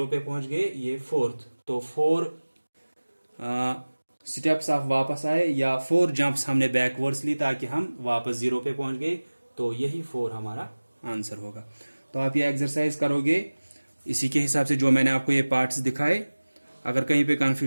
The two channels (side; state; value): both; inverted; correlation -1.00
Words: पे पहुंच गए ये फोर्थ। तो 4 स्टेप्स आप वापस आए या 4 जंप्स हमने बैकवर्ड्स ली ताकि हम वापस 0 पे पहुंच गए, तो यही 4 हमारा आंसर होगा। तो आप ये एक्सरसाइज करोगे इसी के हिसाब से जो मैंने आपको ये पार्ट्स दिखाए। अगर कहीं पे